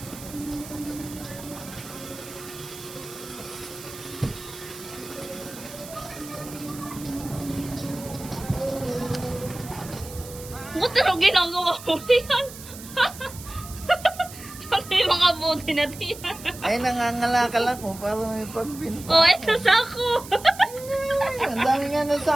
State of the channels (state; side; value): noise; right; hiss, 15 dB below the sound